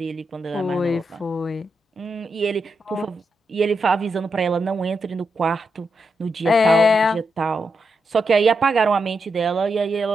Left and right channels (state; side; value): normal; both; correlation 0.84